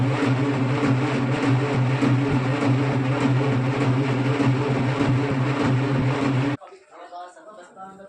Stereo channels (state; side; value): identical; both; correlation 1.00